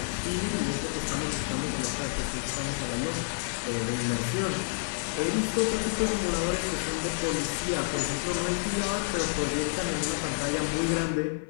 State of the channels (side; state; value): right; silent; 58 dB below the other